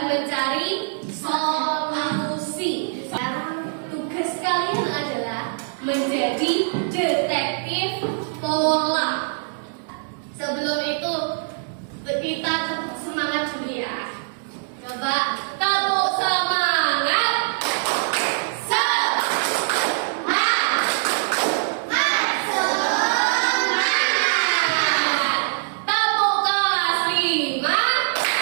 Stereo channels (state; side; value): silent; left; digital silence